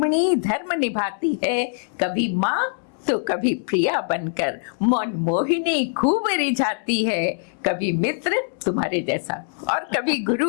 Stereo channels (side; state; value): right; silent; 63 dB below the other